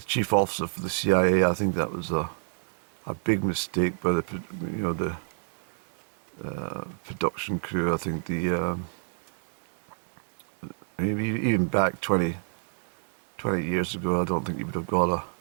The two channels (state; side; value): silent; left; digital silence